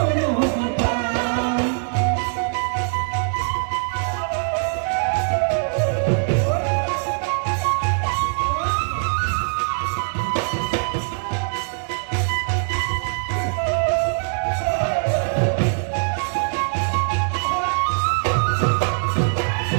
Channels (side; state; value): left; silent; digital silence